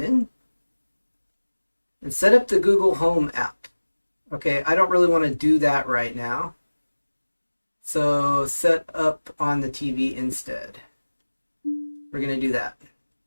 in. And set up the Google Home app. Okay, I don't really want to do that right now. So set up on the TV instead. We're going to do that.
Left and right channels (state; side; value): inverted; both; correlation -1.00